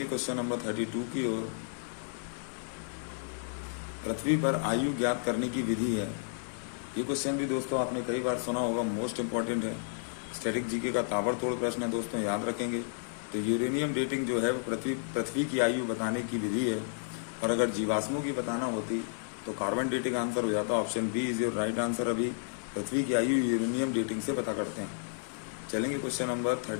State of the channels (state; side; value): silent; right; digital silence